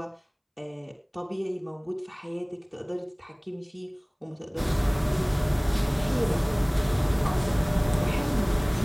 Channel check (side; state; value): both; identical; correlation 1.00